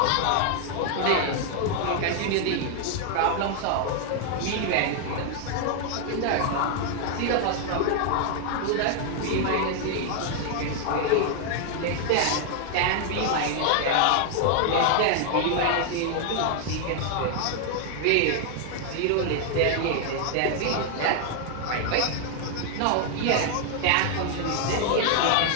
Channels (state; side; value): different; both; correlation 0.00